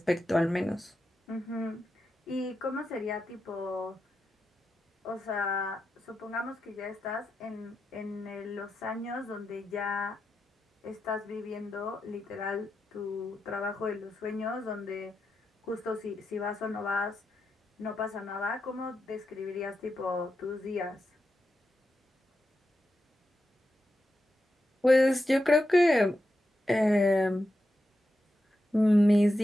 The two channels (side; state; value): both; normal; correlation 0.88